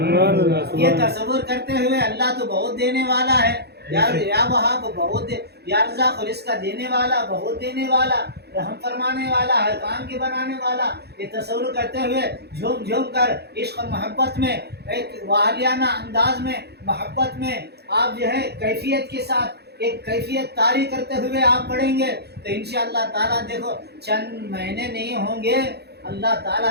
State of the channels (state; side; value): late; left; 0.48 ms